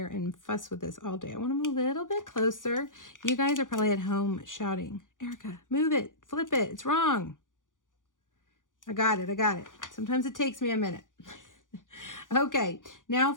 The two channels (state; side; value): late; right; 0.88 ms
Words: and fuss with this all day. I want them a little bit closer. You guys are probably at home shouting, Erica, move it, flip it, it's wrong. I got it, I got it. Sometimes it takes me a minute. Okay, now